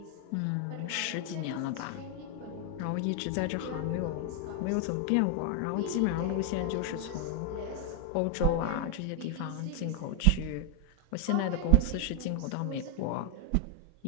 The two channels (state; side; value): different; both; correlation 0.01